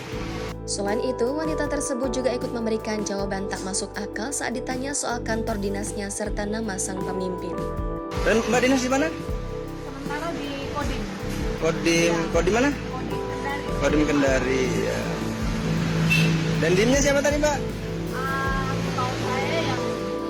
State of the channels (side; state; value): both; identical; correlation 1.00